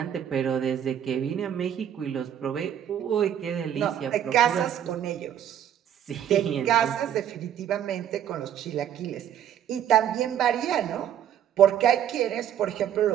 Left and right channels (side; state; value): left; quieter; 10.0 dB